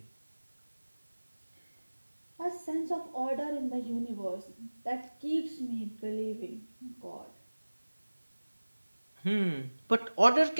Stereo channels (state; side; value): inverted; both; correlation -1.00